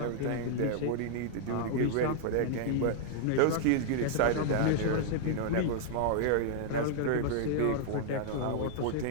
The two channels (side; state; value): both; different; correlation -0.01